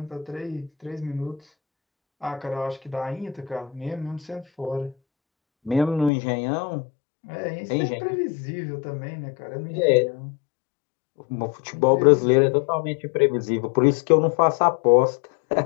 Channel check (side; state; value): right; drops out; at 6.1 s